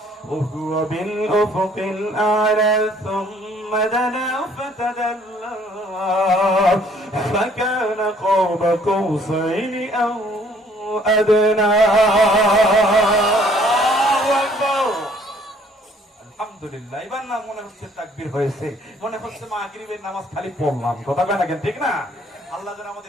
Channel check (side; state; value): both; normal; correlation 0.60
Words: وهو بالأفق الأعلى ثم دنا فتدلى فكان قاب قوسين أو أدنى. আলহামদুলিল্লাহ। এবার না মনে হচ্ছে তাকবীর হয়েছে, মনে হচ্ছে মাগরিবের নামাজ খালি পড়লাম। কথা কয় না কেন? ঠিক না? আল্লাহ যেন